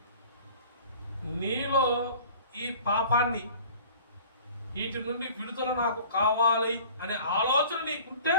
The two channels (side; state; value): both; inverted; correlation -0.46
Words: నీలో ఈ పాపాన్ని, వీటి నుండి విడుదల నాకు కావాలి అనే ఆలోచన నీకుంటే